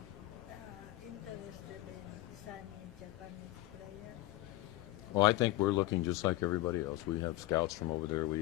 interested in signing Japanese players? Well, I think we're looking just like everybody else. We have scouts from over there. We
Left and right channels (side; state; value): right; quieter; 17.4 dB